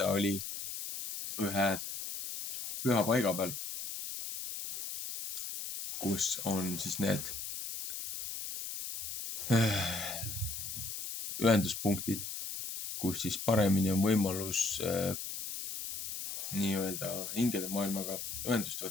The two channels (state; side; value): noise; left; hiss, 6 dB below the sound